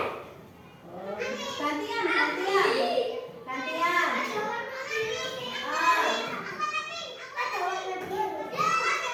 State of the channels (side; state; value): both; identical; correlation 1.00